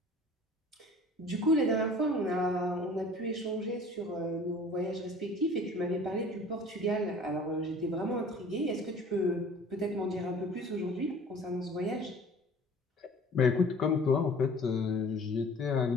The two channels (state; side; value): normal; both; correlation 0.47